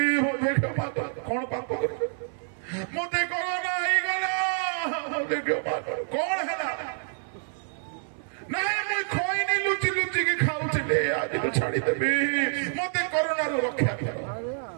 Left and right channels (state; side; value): silent; left; 57 dB below the other